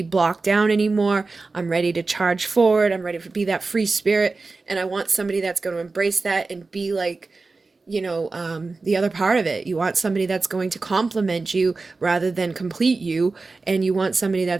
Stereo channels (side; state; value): left; quieter; 3.8 dB